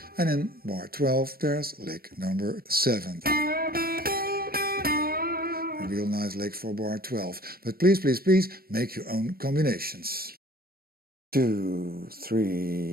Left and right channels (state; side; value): late; left; 0.44 ms